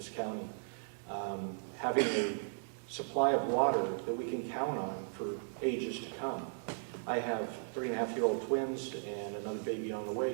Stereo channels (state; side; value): silent; left; digital silence